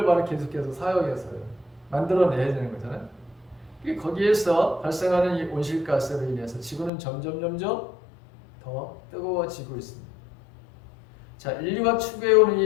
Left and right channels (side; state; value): right; drops out; at 6.9 s